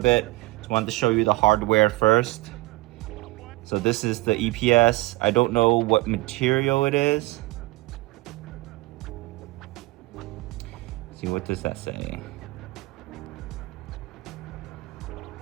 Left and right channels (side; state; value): left; quieter; 21.4 dB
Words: Just wanted to show you the hardware first. So this is the EPS. I don't know what material it is. Let's see, what does that say?